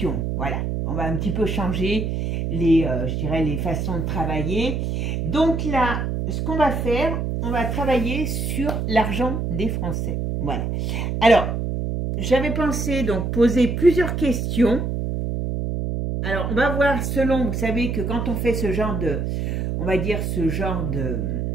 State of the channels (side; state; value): right; noise; hum, 1 dB below the sound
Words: Voilà, on va un petit peu changer je dirais, les façons de travailler. Donc là, ce qu'on va faire, on va travailler sur l'argent des Français. Voilà. Alors, j'avais pensé donc poser plusieurs questions. Alors, on va voir selon, vous savez que quand on fait ce genre de, on va dire ce genre